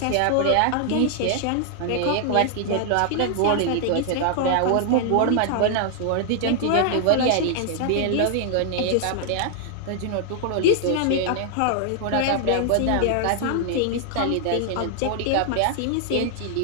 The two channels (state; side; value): different; both; correlation 0.00